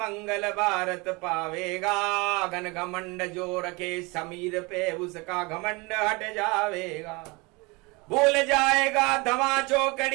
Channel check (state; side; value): quieter; left; 26.3 dB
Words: भारत पावेगा। घन घमंड जो रखे समीर पे उसका घमंड हट जावेगा। भूल जाएगा धमा